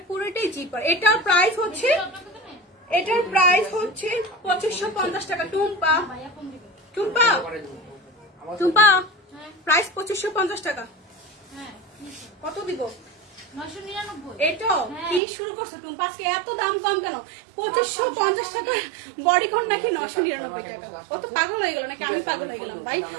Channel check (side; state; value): left; drops out; at 15.2 s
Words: পুরোটাই জিপার। এটার প্রাইস হচ্ছে 2550 টাকা। টুম্পা প্রাইস 2550 টাকা। কত দিব? 999। এটা কি শুরু করছো টুম্পা, আজকে এত দাম কম কেন? 2550 টাকা বডিকন নাকি 999 টাকা? কত পাগল হয়ে গেল নাকি আমি পাগল হয়ে গেলাম? ভাই